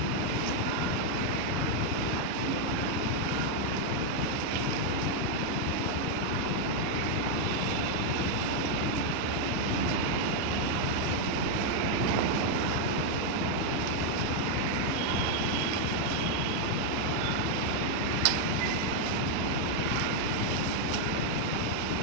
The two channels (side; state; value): both; different; correlation 0.00